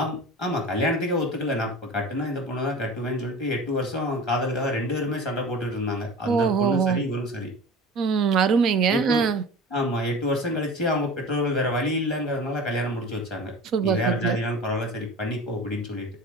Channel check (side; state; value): both; normal; correlation 0.36